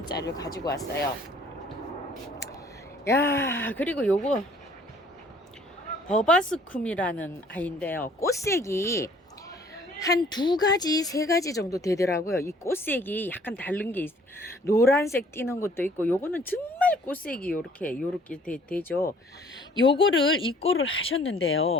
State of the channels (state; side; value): normal; both; correlation 0.57